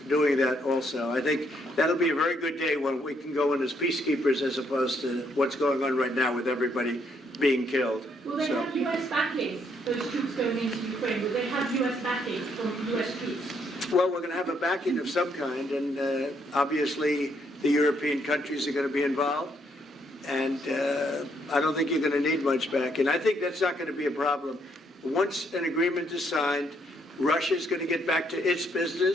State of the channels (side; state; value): both; normal; correlation 0.72